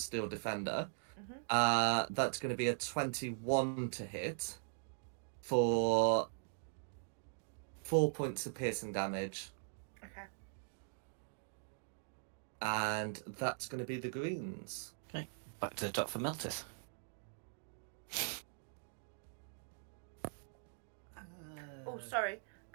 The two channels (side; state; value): left; silent; digital silence